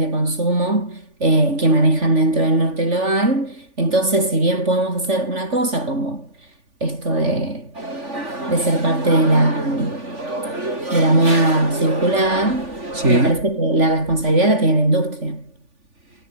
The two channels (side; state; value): left; late; 3.5 ms